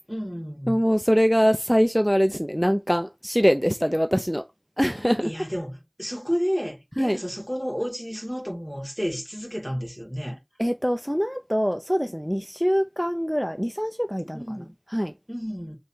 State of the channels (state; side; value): identical; both; correlation 1.00